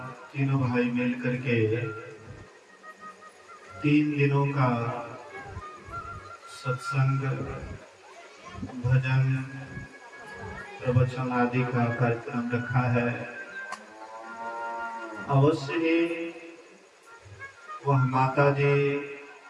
तीनों भाई मिलकर के 3 दिनों का सत्संग, भजन, प्रवचन आदि का कार्यक्रम रखा है। अवश्य ही वह माता जी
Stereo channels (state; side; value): identical; both; correlation 1.00